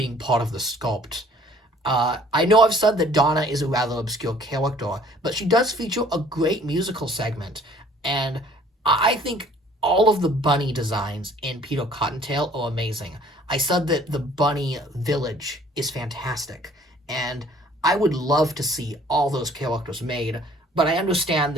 part of the sculpt. I know I've said that Donna is a rather obscure character, but she does feature a great musical segment, and I think all of the bunny designs in Peter Cottontail are amazing. I said that the bunny village is fantastic, and I would love to see all those characters made, but I understand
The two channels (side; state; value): both; normal; correlation 0.56